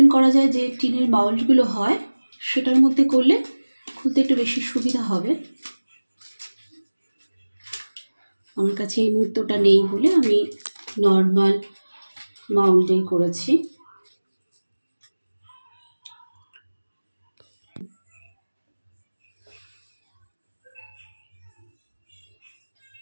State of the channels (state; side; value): inverted; both; correlation -1.00